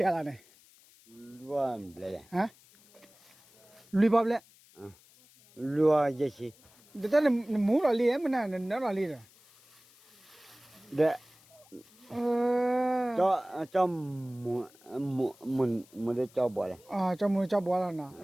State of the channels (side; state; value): left; noise; hiss, 27 dB below the sound